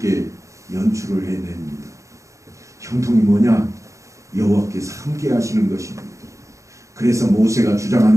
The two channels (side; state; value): left; late; 0.15 ms